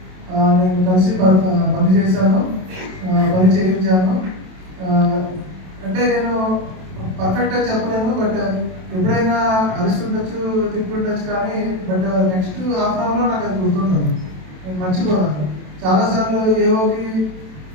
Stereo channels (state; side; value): late; left; 27 ms